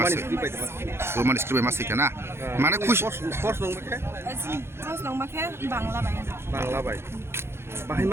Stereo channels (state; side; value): late; left; 0.12 ms